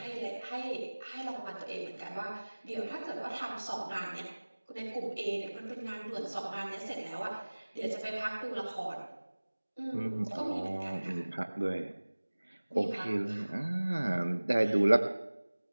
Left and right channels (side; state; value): both; inverted; correlation -1.00